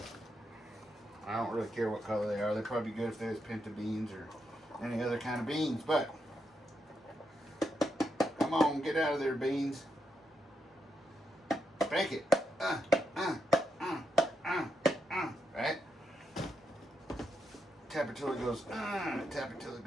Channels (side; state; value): both; normal; correlation 0.82